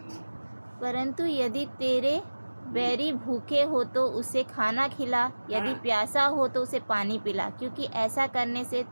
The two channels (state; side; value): inverted; both; correlation -1.00